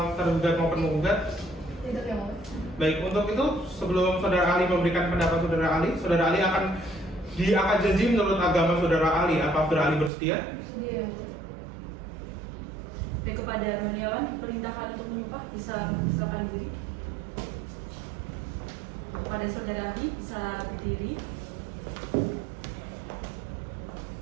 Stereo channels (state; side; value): drops out; left; at 10.1 s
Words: tergugat maupun menggugat? Tidak yang mulia. Baik, untuk itu sebelum saudara ahli memberikan pendapat saudara ahli akan diangkat janji menurut agama saudara ahli. Apa saudara ahli bersedia? Sedia yang mulia. Dan kepada Roniawan diperintahkan untuk menyumpah, bisa mempersilakan diri. Kepada saudara ahli bisa berdiri.